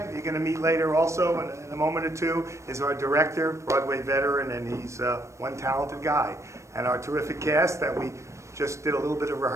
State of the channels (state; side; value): late; left; 0.14 ms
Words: you're going to meet later also in a moment or two, is our director, Broadway veteran, and he's one talented guy. And our terrific cast that we just did a little bit of